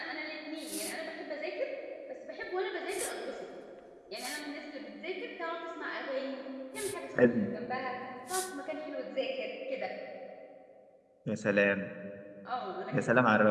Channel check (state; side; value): identical; both; correlation 1.00